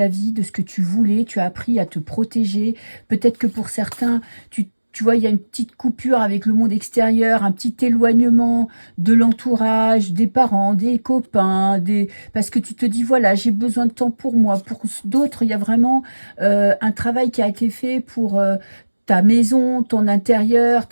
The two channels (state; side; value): inverted; both; correlation -1.00